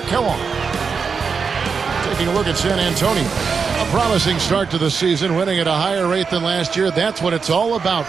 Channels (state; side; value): quieter; left; 5.5 dB